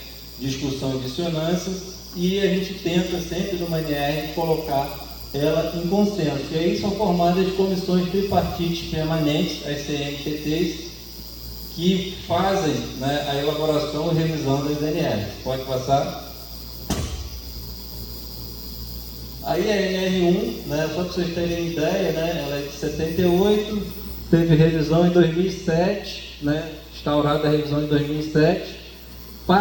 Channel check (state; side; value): identical; both; correlation 1.00